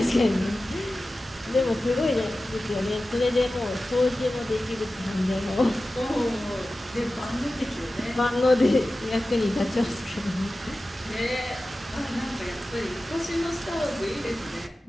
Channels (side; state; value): both; normal; correlation 0.95